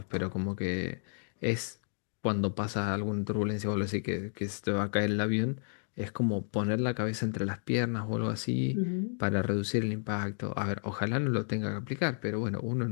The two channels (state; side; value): silent; right; 56 dB below the other